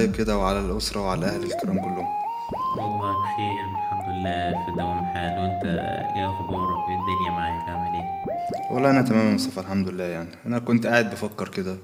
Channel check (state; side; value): identical; both; correlation 1.00